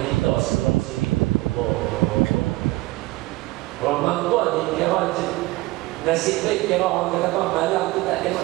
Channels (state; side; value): quieter; left; 20.3 dB